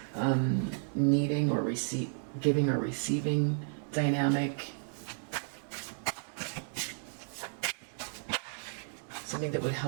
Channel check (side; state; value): left; silent; digital silence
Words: needing or giving or receiving dynamic. something that would